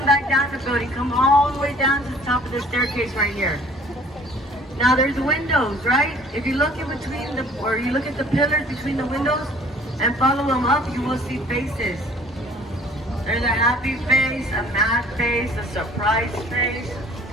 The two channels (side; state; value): both; normal; correlation 0.52